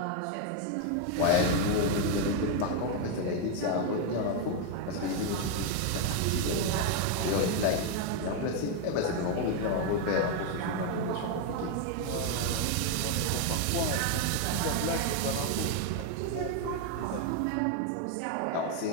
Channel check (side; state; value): both; different; correlation 0.01